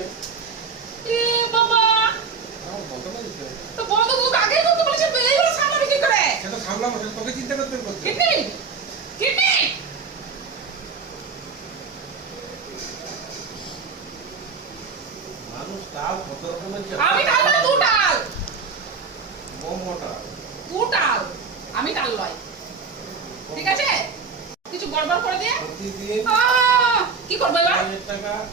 এ বাবা বন্ধ করে দিচ্ছি তো বন্ধ তুই আগে করতে বলেছিস তুই এইগুলো সামলাবি কি করে সেটা সামলাবো সেটা তোকে চিন্তা করতে বলছি কিডনি কিডনি মানুষ তাও কত রকমের আমি টাল না তুই টাল বম মোটা তুই টাল আমি টাল লয় ঠিক আছে কিছু গড়বড় করে দিয়ে প্রতিদিন কি করবে এবার 1,000 টাকা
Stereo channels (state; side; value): quieter; left; 5.2 dB